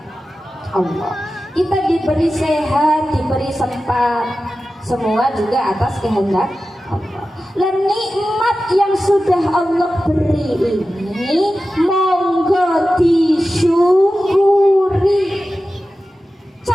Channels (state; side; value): normal; both; correlation 0.94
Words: Allah. Kita diberi sehat, diberi sempat, semua juga atas kehendak Allah. Dan nikmat yang sudah Allah beri ini monggo disyukuri.